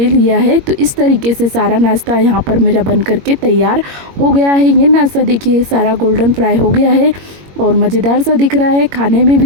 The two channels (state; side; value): late; left; 21 ms